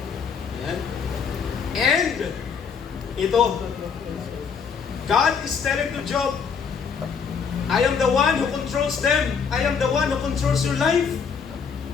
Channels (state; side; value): quieter; right; 6.3 dB